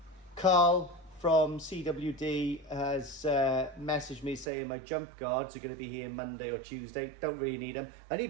Carl from CWD has messaged me saying my jump guards are going to be here Monday or Tuesday. Don't really need them. I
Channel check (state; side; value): drops out; left; at 4.5 s